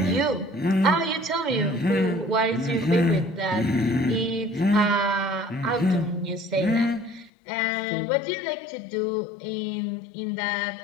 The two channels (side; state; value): right; drops out; at 7.3 s